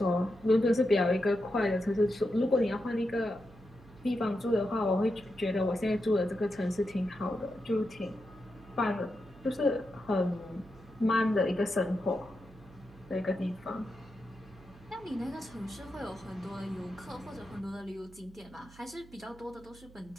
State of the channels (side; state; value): right; noise; hum, 22 dB below the sound